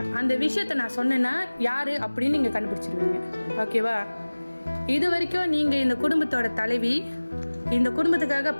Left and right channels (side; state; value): both; inverted; correlation -1.00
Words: அந்த விஷயத்த நான் சொன்னேன்னா யாரு அப்படின்னு நீங்க கண்டுபிடிச்சிருவீங்க. ஓகேவா? இது வரைக்கும் நீங்க இந்த குடும்பத்தோட தலைவி, இந்த குடும்பத்துக்காக